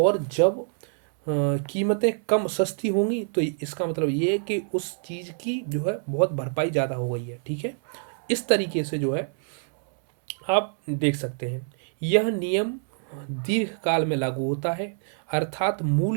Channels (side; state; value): left; silent; 61 dB below the other